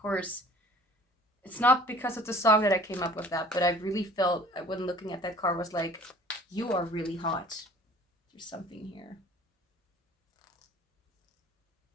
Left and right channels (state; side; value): normal; both; correlation 0.49